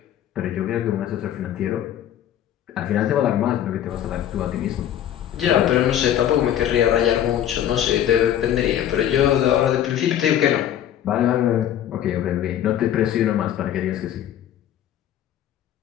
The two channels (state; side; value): quieter; right; 10.9 dB